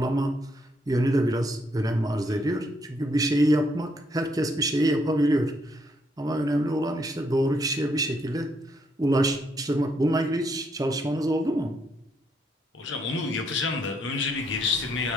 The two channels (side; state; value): both; normal; correlation 0.73